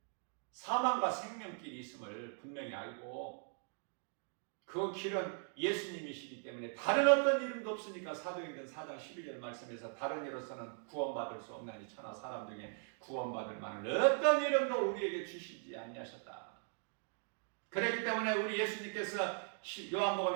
사망과 생명길이 있음을 분명히 알고, 그 길은 예수님이시기 때문에 다른 어떤 이름도 없으니까 사도행전 4장 12절 말씀에서 다른 이로서는 구원받을 수 없나니 천하 사람 중에 구원받을 만한 어떤 이름도 우리에게 주시지 아니하셨다. 그렇기 때문에 우리 예수님께서 요한복음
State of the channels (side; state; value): left; silent; 51 dB below the other